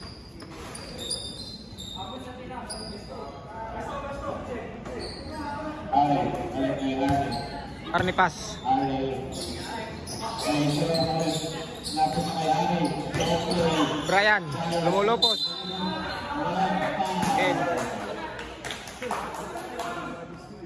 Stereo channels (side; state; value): both; identical; correlation 1.00